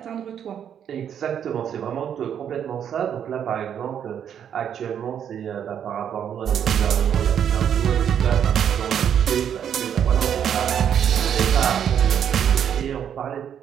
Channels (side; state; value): left; quieter; 8.9 dB